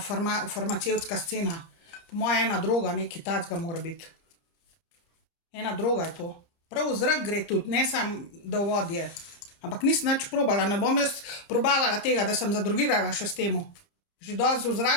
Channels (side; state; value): right; late; 30 ms